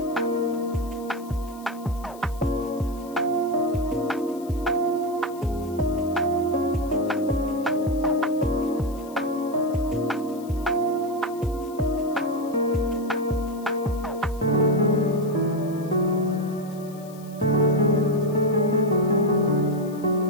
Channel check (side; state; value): left; noise; hiss, 22 dB below the sound